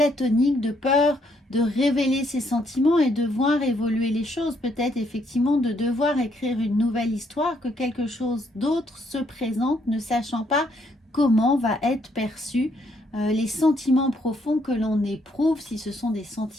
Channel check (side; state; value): both; normal; correlation 0.71